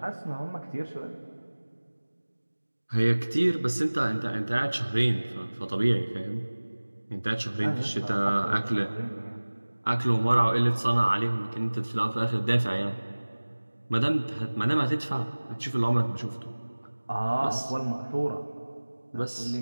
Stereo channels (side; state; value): both; inverted; correlation -1.00